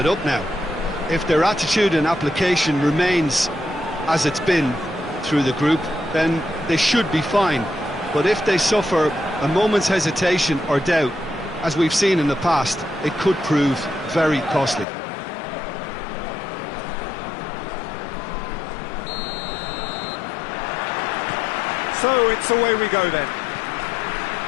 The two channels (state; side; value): drops out; right; at 14.9 s